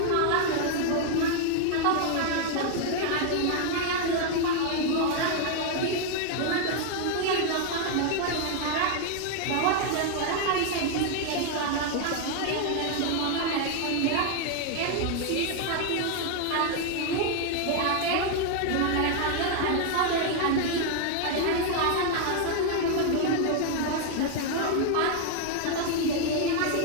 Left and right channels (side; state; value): both; different; correlation 0.00